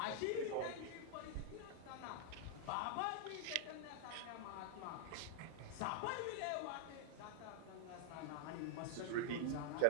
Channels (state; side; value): different; both; correlation 0.00